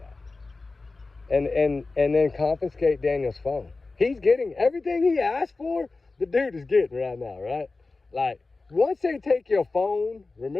And then confiscate Daniel's phone. He's getting everything he asked for, the dude is getting right now, right? Like, once they take your phone,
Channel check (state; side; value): quieter; right; 3.6 dB